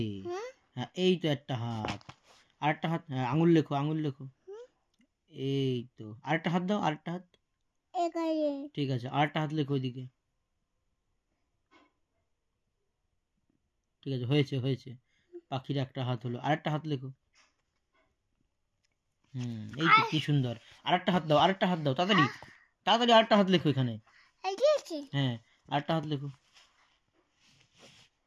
হ্যাঁ, এই তো একটা হাত। আর একটা হাত, হ্যাঁ, আঙুল লেখো, আঙুল লেখো। এই তো, আরেকটা হাত দাও, আরেকটা হাত। এখানে ঠিক আছে, আরেকটা হাত লেখো ওইদিকে। ঠিক আছে, হয়েছে হয়েছে। পাখির একটা হাত হলো, আরেকটা হাত লেখো। এই তো, কি সুন্দর। আরেকটা হাত দাও, আরেকটা হাত দাও, তাড়াতাড়ি তাড়াতাড়ি আরেকটা হাত লেখো এখানে। হ্যাঁ, আরেকটা হাত লেখো।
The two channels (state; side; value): identical; both; correlation 1.00